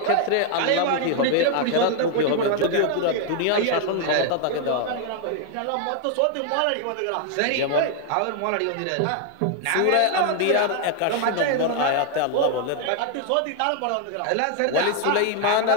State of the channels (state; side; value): different; both; correlation 0.00